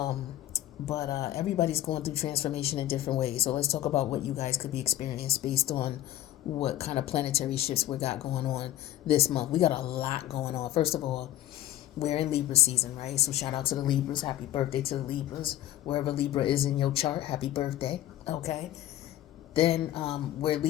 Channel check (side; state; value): right; quieter; 13.4 dB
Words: But everybody's going through transformation in different ways. So let's talk about what you guys could be experiencing based on what kind of planetary shifts we got going on this month. We got a lot going on. First of all, we're in Libra season, right? So shout out to the Libras. Happy birthday to the Libras. Wherever Libra is in your chart, happy birthday. Okay. Then we're